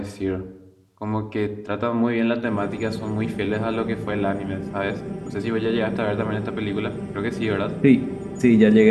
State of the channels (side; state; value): both; identical; correlation 1.00